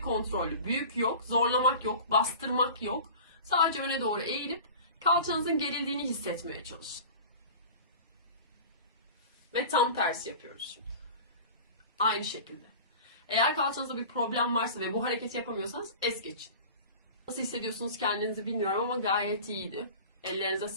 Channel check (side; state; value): both; inverted; correlation -0.37